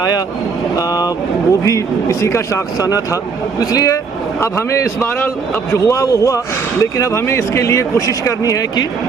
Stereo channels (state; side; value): quieter; left; 5.1 dB